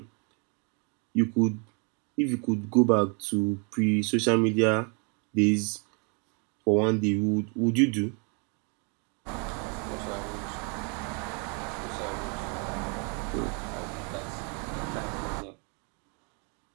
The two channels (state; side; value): quieter; left; 35.8 dB